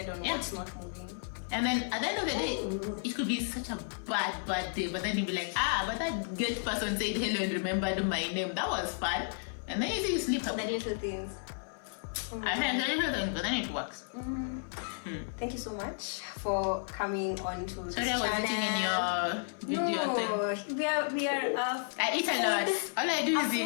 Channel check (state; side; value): silent; right; 56 dB below the other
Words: on what's not moving. And then at the end of the day, it could be such a bad day, but then you'll be like, but that good person said hello and remembered my name. That was fun. And then you see you sleep up. The little things. I mean, the little things, but then it works. Thank you so much for coming on to this channel. Sorry, I was eating in your video thing. We are I eat a lot. All I do is